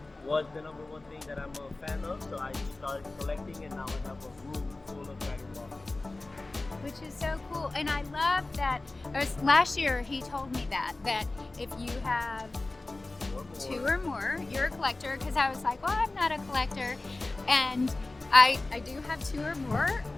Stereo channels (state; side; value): quieter; right; 3.1 dB